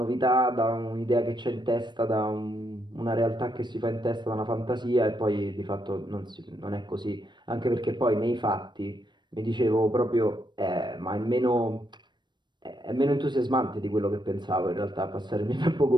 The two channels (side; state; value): left; late; 0.22 ms